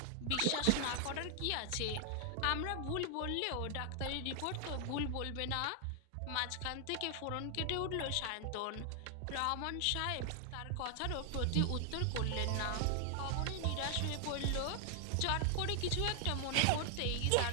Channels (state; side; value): different; both; correlation 0.00